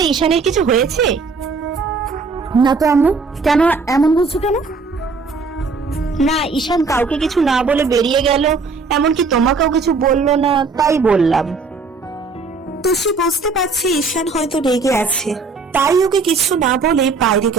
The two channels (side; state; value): left; quieter; 4.4 dB